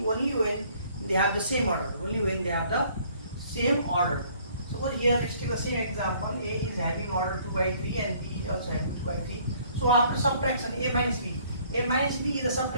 only when they have the same order. Suppose here let's take the same example. A is having order 2 by 3 and B is also having 2 by 3. So after subtraction, A minus B is the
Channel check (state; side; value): inverted; both; correlation -0.60